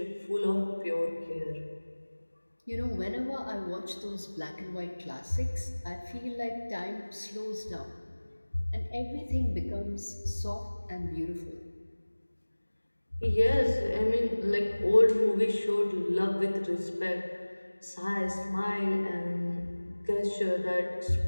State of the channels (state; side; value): inverted; both; correlation -1.00